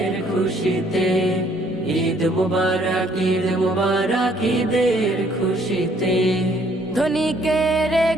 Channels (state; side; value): normal; both; correlation 0.64